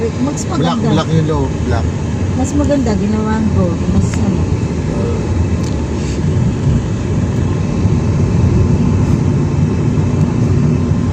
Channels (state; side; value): identical; both; correlation 1.00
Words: mas Black, maganda. black yung low, black. Mas maganda, ginawa ang gold. Mas ano.